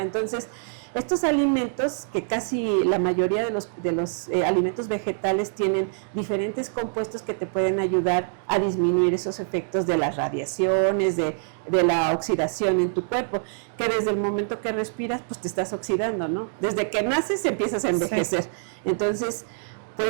Entonces, estos alimentos, que casi la mayoría de los alimentos vegetales tienen diferentes compuestos que te pueden ayudar a disminuir esos efectos de las radiaciones, de la oxidación en tu cuerpo, que desde el momento que respiras, pues te estás oxidando, ¿no? Desde que naces empiezas a envejecer. Sí. Entonces,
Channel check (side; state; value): left; silent; digital silence